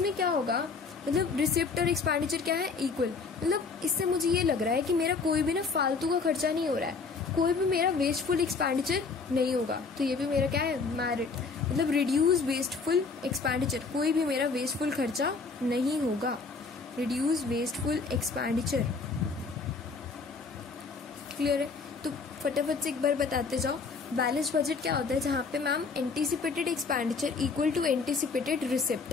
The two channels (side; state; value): right; quieter; 4.6 dB